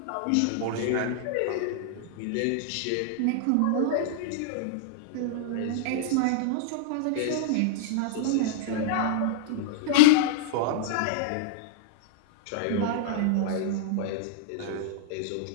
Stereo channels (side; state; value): both; different; correlation -0.01